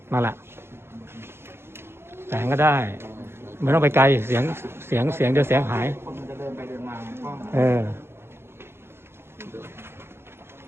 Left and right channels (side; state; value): left; late; 0.12 ms